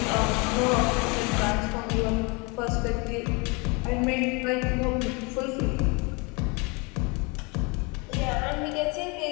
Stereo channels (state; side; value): quieter; right; 29.4 dB